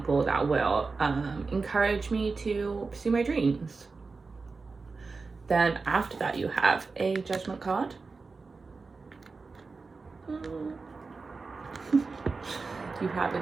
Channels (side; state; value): left; quieter; 4.2 dB